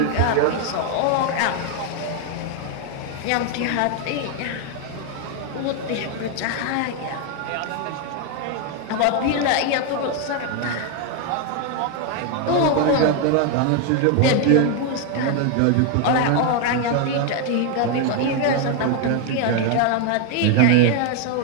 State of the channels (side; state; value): both; different; correlation 0.01